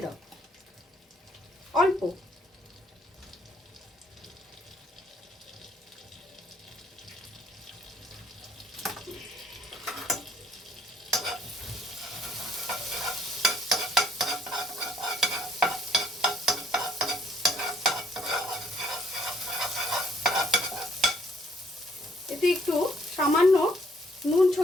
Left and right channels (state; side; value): normal; both; correlation 0.64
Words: দাও, অল্প। এতে একটু সামান্য নুন